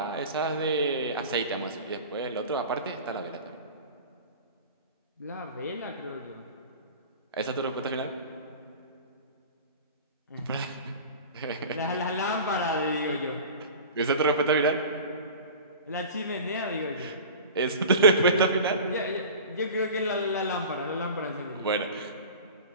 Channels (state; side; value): inverted; both; correlation -0.37